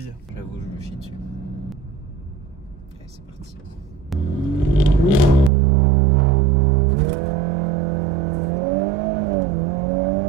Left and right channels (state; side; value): drops out; left; at 5.5 s